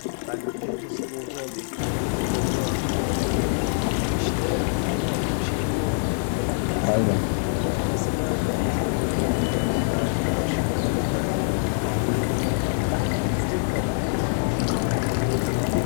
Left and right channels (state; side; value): silent; right; digital silence